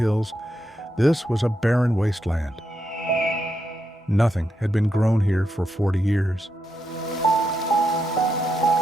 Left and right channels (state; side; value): normal; both; correlation 0.83